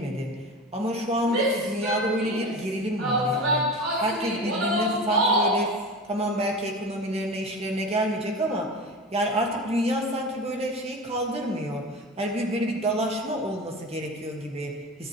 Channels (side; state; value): both; normal; correlation 0.30